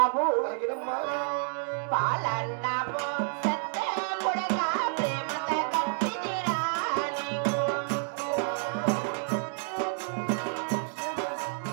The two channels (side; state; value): left; silent; 58 dB below the other